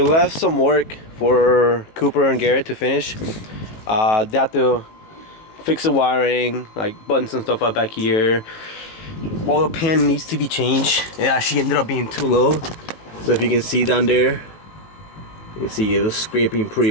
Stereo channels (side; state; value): right; late; 18 ms